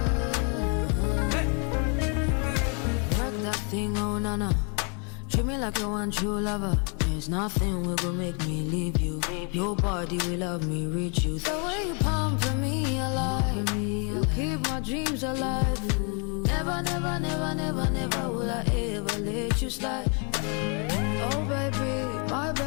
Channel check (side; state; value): right; quieter; 37.5 dB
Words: Work that thing, oh nana. Treat me like you want true lover. There's nothing will go make me leave you. Nobody will love me, reach you. The way you pumping me alive, you keep my dreams alive. Never, never, never, never, never will I ever let you slide. Oh baby, my